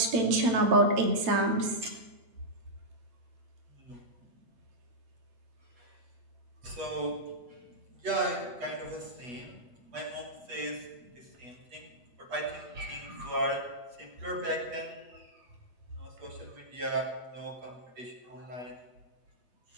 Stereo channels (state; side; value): late; left; 8.3 ms